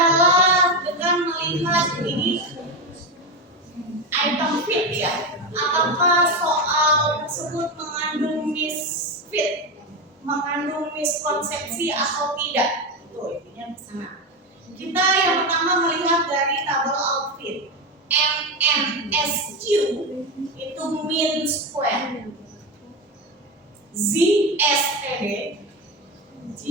dengan melihat ini item fit ya. Apakah soal tersebut mengandung misfit, mengandung miskonsepsi atau tidak? Tuh intinya ke sana. Kita yang pertama melihat dari tabel outfit. MNSQ itu mean square. ZSTD G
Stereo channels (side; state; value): both; normal; correlation 0.15